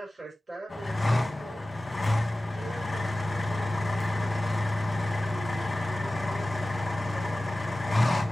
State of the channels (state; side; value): normal; both; correlation 0.96